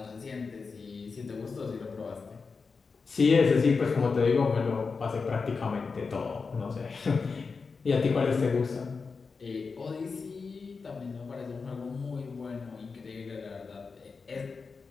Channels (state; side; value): quieter; right; 4.8 dB